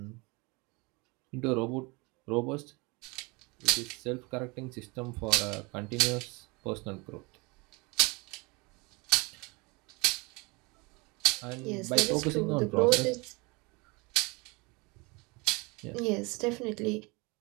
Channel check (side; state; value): left; quieter; 27.3 dB